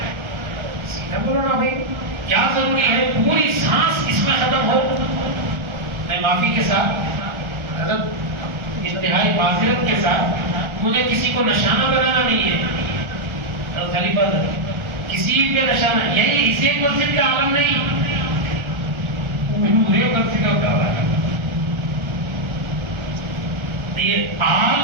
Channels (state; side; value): late; left; 1.4 ms